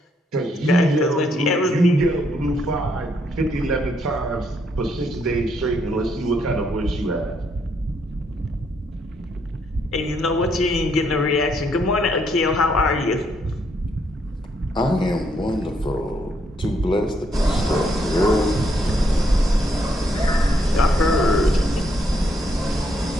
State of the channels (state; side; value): normal; both; correlation 0.74